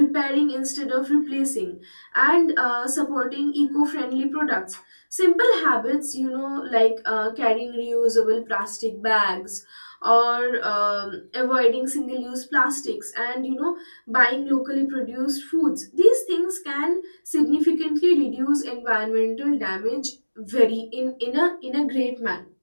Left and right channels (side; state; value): both; inverted; correlation -1.00